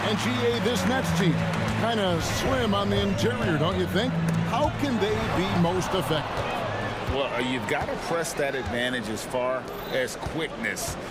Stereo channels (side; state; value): both; identical; correlation 1.00